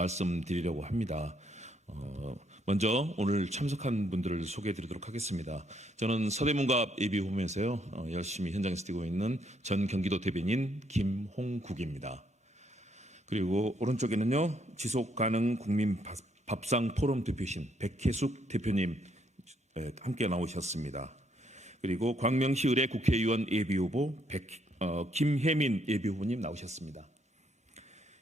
합니다. 먼저 오늘 참석한 분들을 소개해드리도록 하겠습니다. 저는 서대문갑 예비후보면서요 열심히 현장에서 뛰고 있는 전 경기도 대변인 김홍국입니다. 그리고 오른쪽에는요 지속가능 국민 밥상 포럼 대표신 백혜숙 대표님 함께 나오셨습니다. 그리고 광명시 의뢰 국회의원 예비후보 김혜민 예비후보님 나오셨습니다.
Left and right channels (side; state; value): both; normal; correlation 0.72